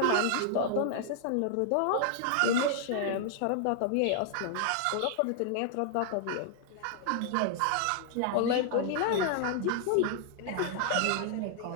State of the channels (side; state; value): both; different; correlation 0.00